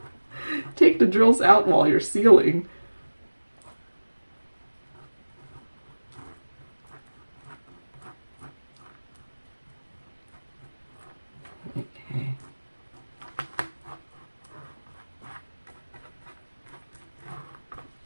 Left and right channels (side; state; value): both; inverted; correlation -1.00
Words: take the drills out while you're sealing. Okay.